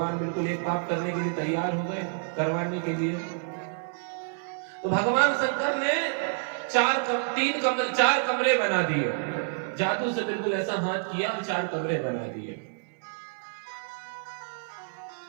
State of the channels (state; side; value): silent; left; 59 dB below the other